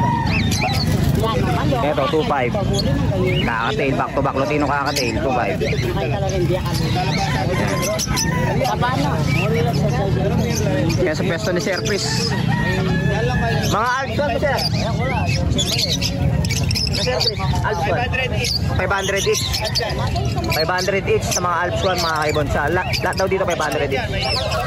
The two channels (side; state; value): both; identical; correlation 1.00